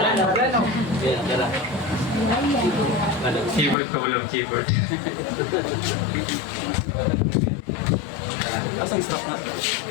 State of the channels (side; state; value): right; drops out; at 3.8 s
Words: Keyboard ko walang keyboard. Asang strap na?